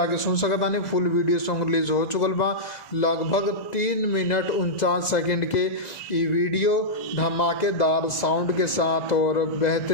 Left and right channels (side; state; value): right; late; 2.0 ms